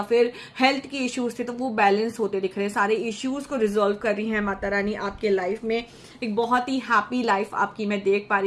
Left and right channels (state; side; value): identical; both; correlation 1.00